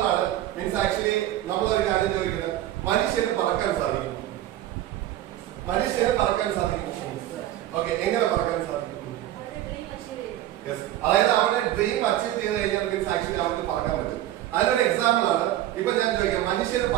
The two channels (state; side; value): quieter; left; 13.5 dB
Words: ആണ് മീൻസ് ആക്ച്വലി നമ്മളൊരു കാര്യം ചോദിക്കുന്നത്, മനുഷ്യന് പറക്കാൻ സാധിക്കും. മനുഷ്യന് പറക്കാൻ സാധിക്കും. ഓക്കെ, എങ്ങനെ പറക്കാൻ സാധിക്കും? അതായത് അവരുടെ ഡ്രീം അച്ചീവ് ചെയ്ത് കഴിഞ്ഞാൽ മീൻസ് ആക്ച്വലി അവർക്ക് പറക്കാൻ പറ്റും. അതിനൊരു എക്സാമ്പിൾ ആണ് ഇപ്പൊ ഞാൻ ചോദിക്കാം, മനുഷ്യന്